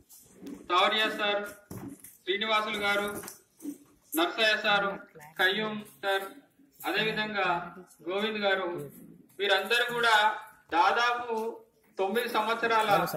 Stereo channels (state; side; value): identical; both; correlation 1.00